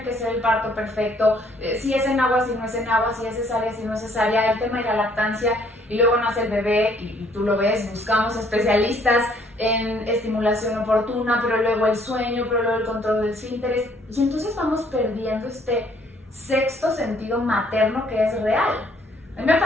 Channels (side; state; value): both; normal; correlation 0.63